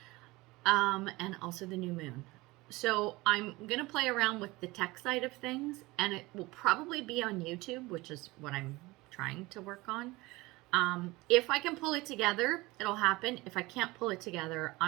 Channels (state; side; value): quieter; left; 21.4 dB